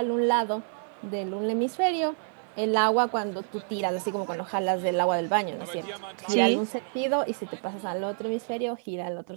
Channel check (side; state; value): left; silent; 59 dB below the other